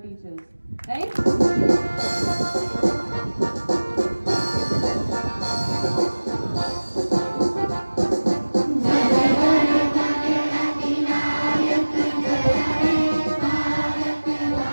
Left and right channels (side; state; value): both; inverted; correlation -1.00